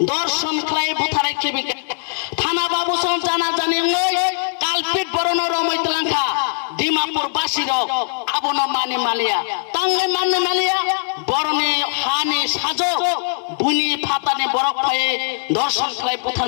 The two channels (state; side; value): silent; right; digital silence